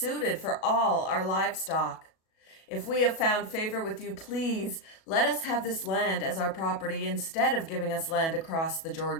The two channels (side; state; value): right; late; 37 ms